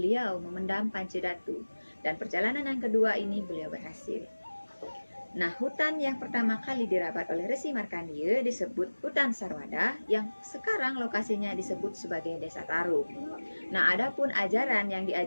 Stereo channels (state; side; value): inverted; both; correlation -1.00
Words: memendam Pancedatu. Dan perjalanan yang kedua ini beliau berhasil. Nah, hutan yang pertama kali dirabat oleh Resi Markandeya disebut Hutan Sarwada, yang sekarang lokasinya disebut sebagai Desa Taru. Nah, adapun ajaran yang